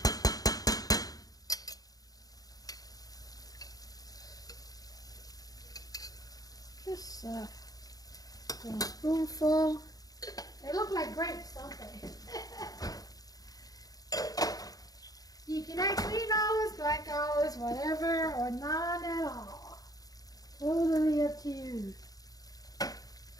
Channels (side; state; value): right; late; 0.18 ms